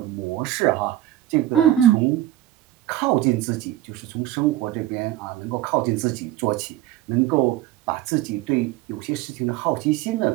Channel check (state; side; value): quieter; left; 14.0 dB